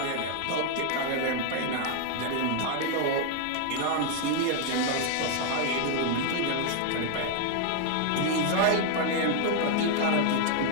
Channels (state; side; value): different; both; correlation 0.00